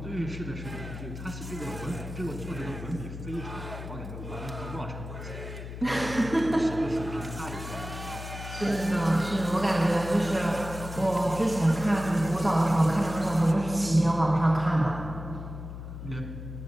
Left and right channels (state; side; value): noise; left; hum, 9 dB below the sound